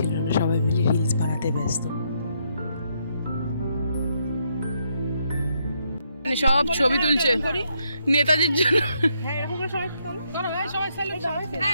না, সবাই মিলে রিলস বানাতে ব্যস্ত। সব ছবি তুলছে নেতাজির জন্য।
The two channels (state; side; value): inverted; both; correlation -0.76